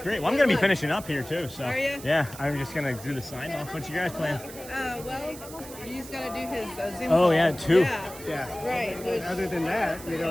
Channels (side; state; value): right; noise; hiss, 15 dB below the sound